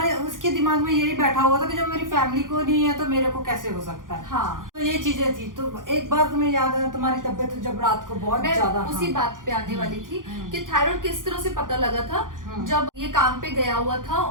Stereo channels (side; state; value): left; late; 0.89 ms